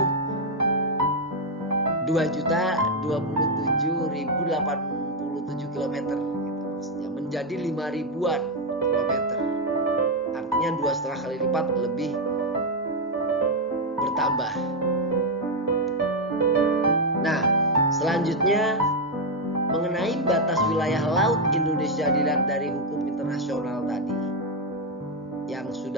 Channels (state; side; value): normal; both; correlation 0.03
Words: 2.027.087 km gitu maksudnya, menjadi 5.000-an kilometer. Artinya 2,5 kali lipat lebih bertambah. Nah, selanjutnya mengenai batas wilayah laut Indonesia dilihat dari hukum internasional tadi yang